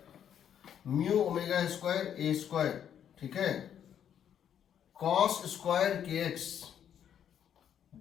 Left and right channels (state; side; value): quieter; right; 9.2 dB